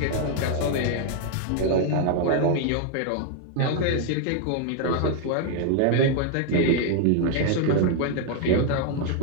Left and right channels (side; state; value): both; different; correlation 0.00